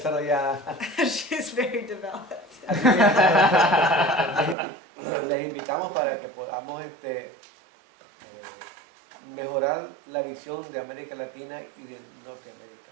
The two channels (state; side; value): drops out; left; at 4.5 s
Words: She's very developed. Así que les invitamos para que podamos mejorar la visión de América Latina y de Norteamérica.